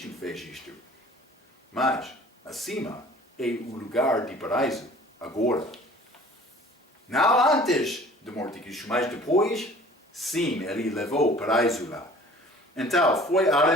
fez isto. Mas, acima é o lugar de paraíso, agora. Não antes da morte de Cristo, mas depois, sim, ele levou o paraíso lá. Então, foi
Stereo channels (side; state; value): both; normal; correlation 0.48